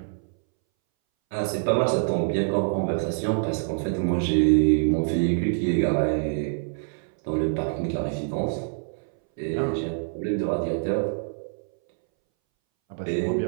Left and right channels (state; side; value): silent; left; 61 dB below the other